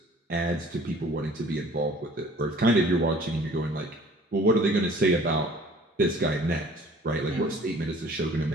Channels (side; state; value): both; normal; correlation 0.51